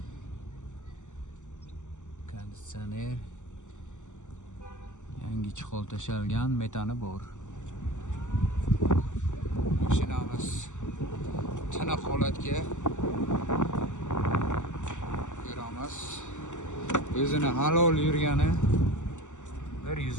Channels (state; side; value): late; right; 0.85 ms